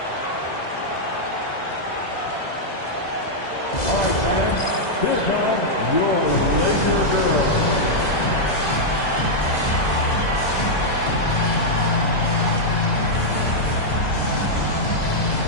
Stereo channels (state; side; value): late; right; 2.0 ms